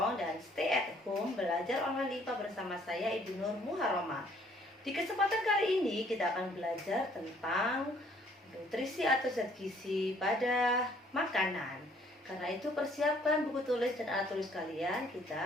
dan stay at home. Belajar online IPA bersama saya Ibu Nur Muharrama. Di kesempatan kali ini kita akan belajar tentang nutrisi atau zat gizi pada makanan. Karena itu persiapkan buku tulis dan alat tulis kalian,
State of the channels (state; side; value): normal; both; correlation 0.62